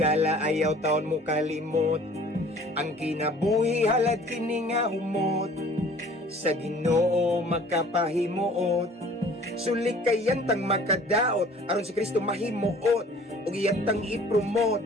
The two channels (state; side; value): normal; both; correlation 0.50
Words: ayaw taon mo kalimot, ang kinabuhi halad kini nga humot, sa Ginoo magkapahimuot. Sulik kayantang makadaot, aron si Kristo mahimuot, ug iyantang ipromote,